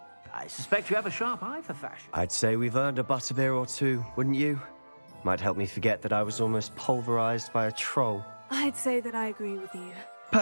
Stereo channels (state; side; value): inverted; both; correlation -1.00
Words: I suspect you have a sharp eye for fashion. I'd say we've earned a butterbeer or two, wouldn't you? Might help me forget that I was almost pulverized by a troll. I'd say that I agree with you.